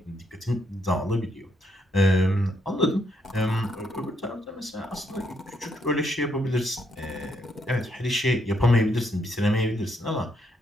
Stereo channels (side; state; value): both; normal; correlation 0.75